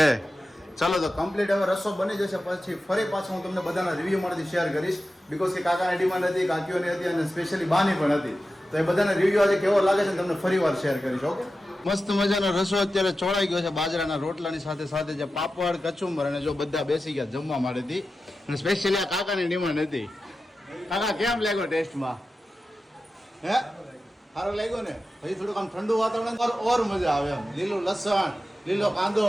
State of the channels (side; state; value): both; normal; correlation 0.93